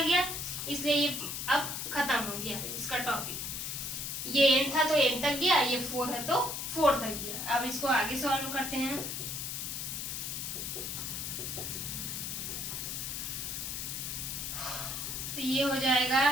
गया, इसलिए ये अब खत्म हो गया इसका टॉपिक। ये n था तो n तक गया, ये 4 है तो 4 तक गया। अब इसको आगे सॉल्व करते हैं। तो ये हो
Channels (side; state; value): left; noise; hiss, 4 dB below the sound